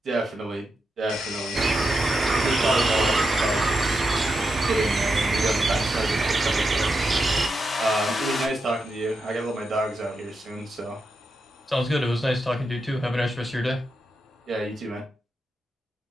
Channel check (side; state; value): both; normal; correlation 0.86